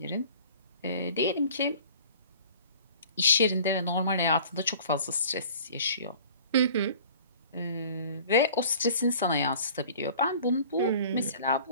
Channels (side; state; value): both; inverted; correlation -0.47